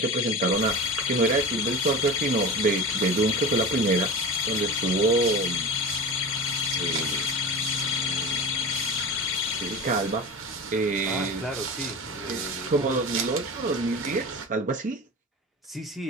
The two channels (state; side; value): normal; both; correlation 0.30